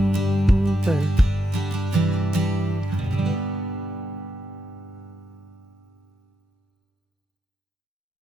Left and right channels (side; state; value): both; normal; correlation 0.82